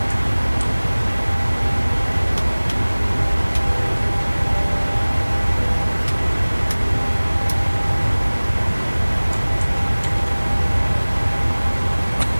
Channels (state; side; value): inverted; both; correlation -1.00